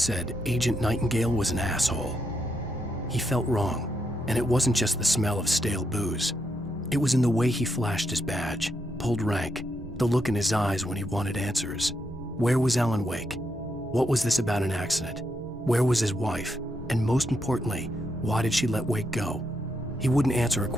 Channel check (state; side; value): normal; both; correlation 0.80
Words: Agent Nightingale was an asshole. He felt wrong, and it wasn't just the smell of stale booze. It was in the way he flashed his badge, pulled rank, the look in his eyes when he wanted answers. Where was Alan Wake? What was this about an accident? Where was his wife? And most importantly, why did she let Wake go? He wouldn't answer her